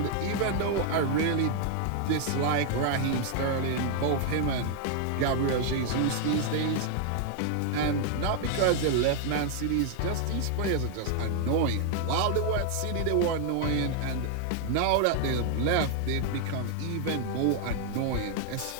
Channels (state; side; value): different; both; correlation 0.00